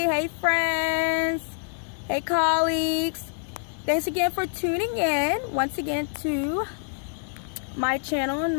friends, hey colleagues. Thanks again for tuning in once again to my channel and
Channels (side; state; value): right; silent; digital silence